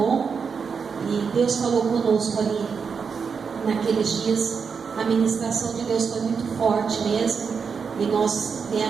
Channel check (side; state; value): left; quieter; 5.9 dB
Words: E Deus falou conosco ali naqueles dias. A ministração de Deus foi muito forte mesmo. E nós